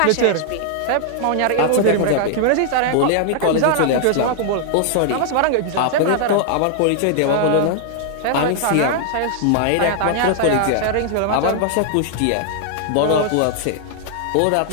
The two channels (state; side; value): different; both; correlation 0.00